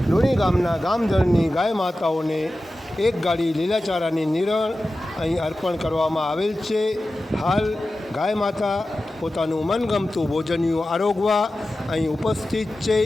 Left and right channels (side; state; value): both; normal; correlation 0.94